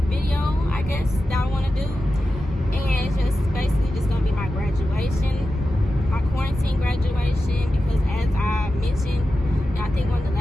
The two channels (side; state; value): both; normal; correlation 0.92